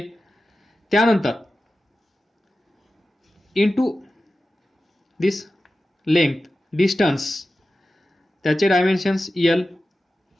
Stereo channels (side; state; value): both; normal; correlation 0.93